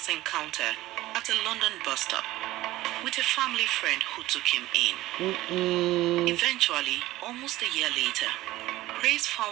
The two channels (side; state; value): left; quieter; 16.8 dB